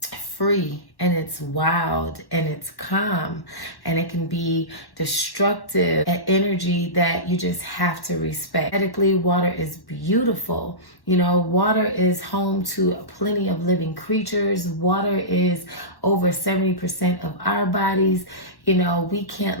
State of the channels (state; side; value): late; right; 1.1 ms